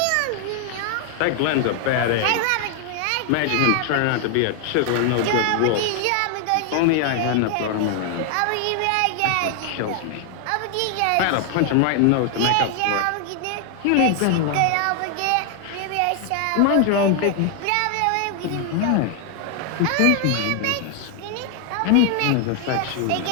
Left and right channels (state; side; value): different; both; correlation 0.00